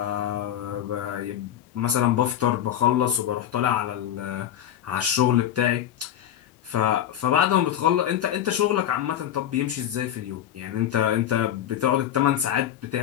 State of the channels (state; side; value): quieter; right; 10.8 dB